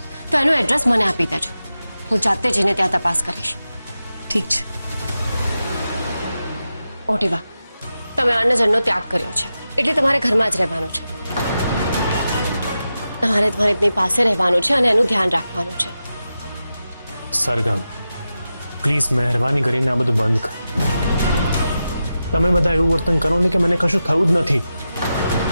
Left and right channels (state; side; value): inverted; both; correlation -0.91